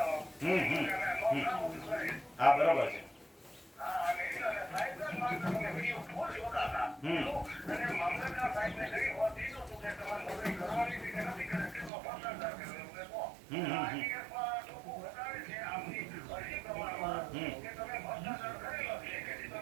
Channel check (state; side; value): drops out; left; at 11.9 s